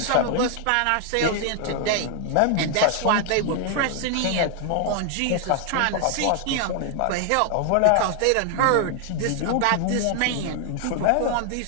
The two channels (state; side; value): different; both; correlation 0.00